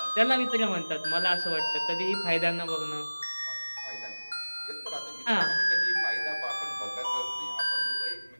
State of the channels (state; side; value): inverted; both; correlation -1.00